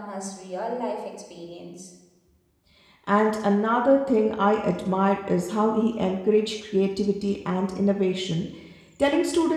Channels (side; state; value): both; identical; correlation 1.00